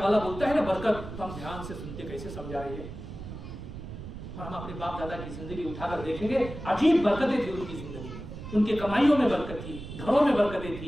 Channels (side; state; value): right; noise; rumble, 10 dB below the sound